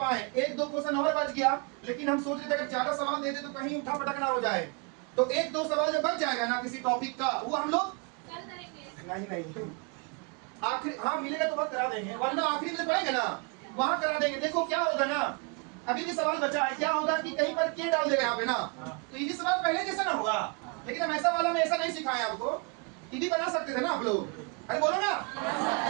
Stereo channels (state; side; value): quieter; left; 32.7 dB